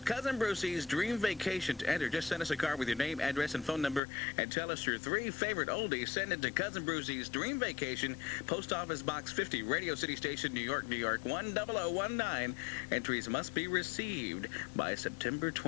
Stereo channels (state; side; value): drops out; right; at 4.0 s